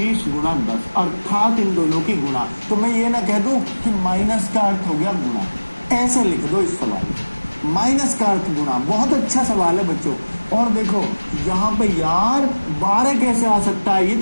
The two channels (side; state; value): both; inverted; correlation -1.00